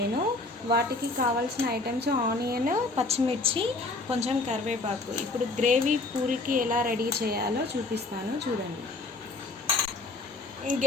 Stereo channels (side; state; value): right; quieter; 3.2 dB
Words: వాటికి కావాల్సిన ఐటమ్స్ ఆనియన్, పచ్చిమిర్చి, కొంచెం కరివేపాకు. ఇప్పుడు గ్రేవీ పూరికి ఎలా రెడీ చేయాలో చూపిస్తాను, చూడండి. ఈ